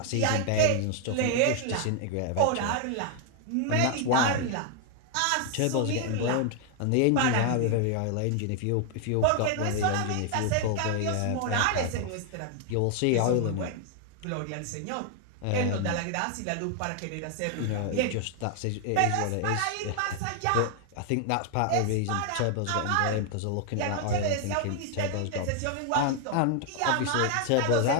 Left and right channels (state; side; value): different; both; correlation 0.00